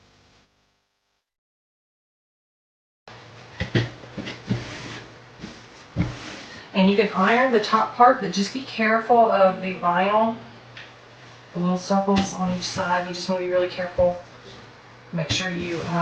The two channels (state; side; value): identical; both; correlation 1.00